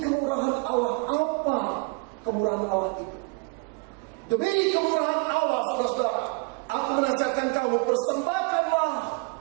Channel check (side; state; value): left; quieter; 29.3 dB